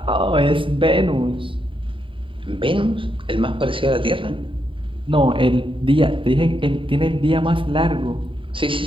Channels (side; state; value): left; late; 0.25 ms